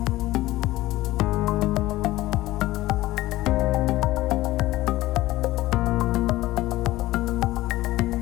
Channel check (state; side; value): quieter; right; 17.2 dB